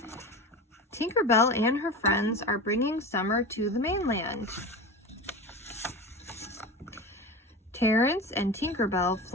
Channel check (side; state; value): both; normal; correlation 0.28